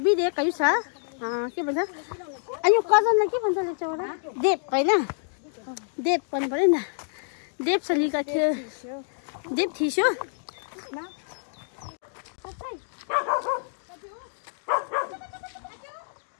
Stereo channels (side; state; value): right; silent; digital silence